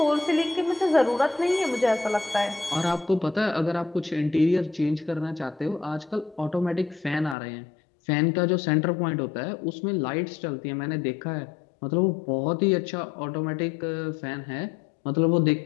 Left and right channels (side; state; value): right; drops out; at 7.4 s